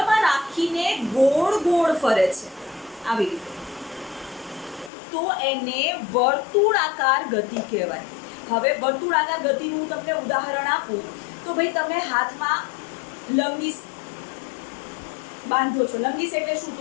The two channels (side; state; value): right; drops out; at 4.9 s